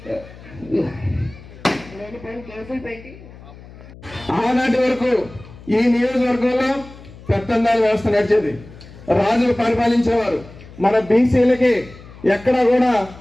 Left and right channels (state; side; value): noise; left; hum, 19 dB below the sound